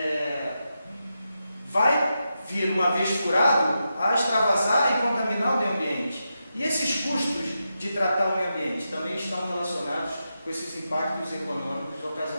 vai vir, uma vez furado, a extravasar e contaminar o meio ambiente. E esses custos de tratar o meio ambiente também estão relacionados com esses impactos econômicos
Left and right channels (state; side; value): inverted; both; correlation -0.88